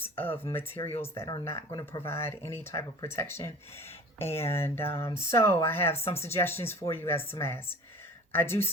of materials that are not going to provide any type of protection. And so I have some suggestions for you as to masks. I do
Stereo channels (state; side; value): normal; both; correlation 0.42